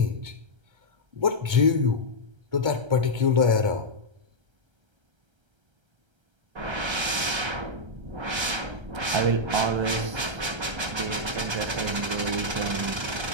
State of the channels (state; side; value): late; left; 1.3 ms